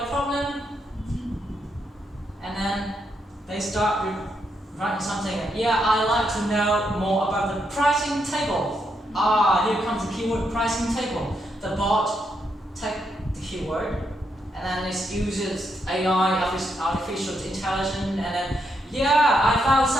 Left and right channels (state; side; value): normal; both; correlation 0.80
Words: problem?" And then they start writing something. "Yeah, I'd like to know more about the pricing table." Here comes the keyword pricing table. The bot takes the keyword, and then it uses AI, artificial intelligence, and then, "Yeah, I found